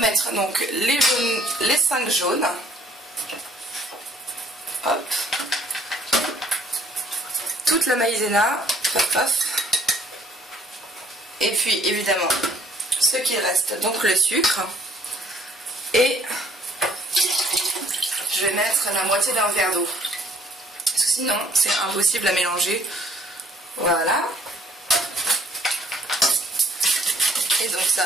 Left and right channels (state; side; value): normal; both; correlation 0.61